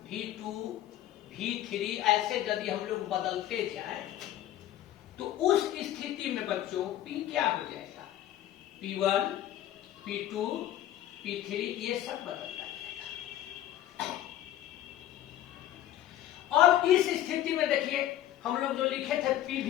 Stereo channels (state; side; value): quieter; right; 12.6 dB